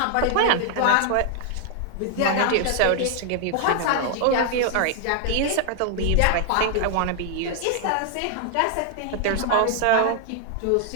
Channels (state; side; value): different; both; correlation 0.00